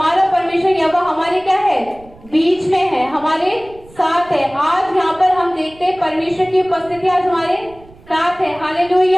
परमेश्वर यहोवा हमारे क्या है, बीच में है, हमारे साथ है। आज यहाँ पर हम देखते हैं परमेश्वर की उपस्थिति आज हमारे साथ है।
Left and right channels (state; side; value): noise; right; rumble, 24 dB below the sound